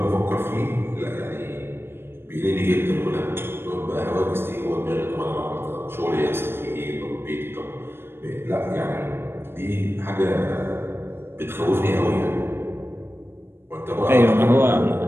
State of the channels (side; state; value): left; late; 0.11 ms